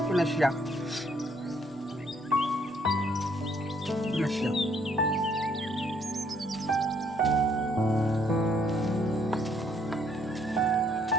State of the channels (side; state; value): both; normal; correlation 0.66